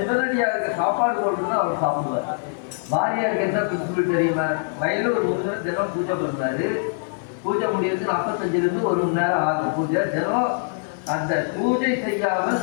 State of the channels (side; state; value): right; silent; 57 dB below the other